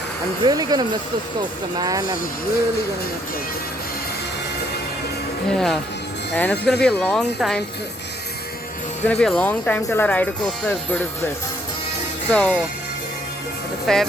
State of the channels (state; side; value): normal; both; correlation 0.68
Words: really gonna miss this coaster, man. I'm really gonna miss it. Yeah, and it's gonna be a long time. It's gonna be a long time till I ride a coaster as good as this. So, the